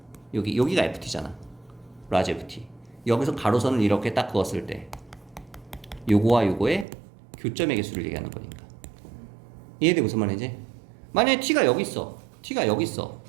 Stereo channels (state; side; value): drops out; left; at 6.9 s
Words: 여기가 ft잖아. 라지 ft. 여기서 가로선을 이렇게 딱 그었을 때 요거와 요거의 교점의 개수를 얘기하는 거니까. 이해돼? 무슨 말인지? 만약에 t가 여기 있어. t가 여기 있어.